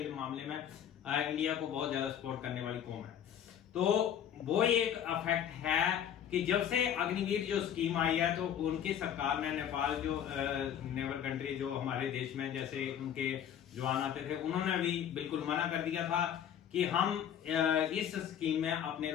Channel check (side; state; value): right; quieter; 9.5 dB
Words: मामले में इंडिया को बहुत ज्यादा सपोर्ट करने वाली कौम है। तो वो एक अफेक्ट है कि जब से अग्निवीर जो स्कीम आई है तो उनकी सरकार ने नेपाल जो नेबर कंट्री जो हमारे देश में जैसे उनके जवान आते थे, उन्होंने भी बिल्कुल मना कर दिया था कि हम इस स्कीम में अपने